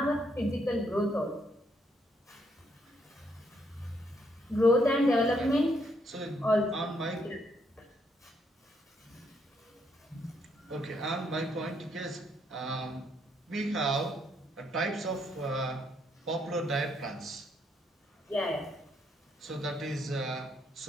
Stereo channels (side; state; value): both; normal; correlation 0.73